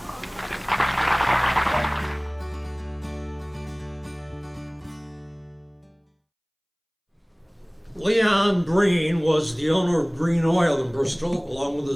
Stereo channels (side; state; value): both; identical; correlation 1.00